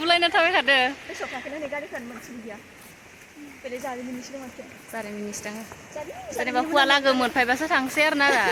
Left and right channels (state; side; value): identical; both; correlation 1.00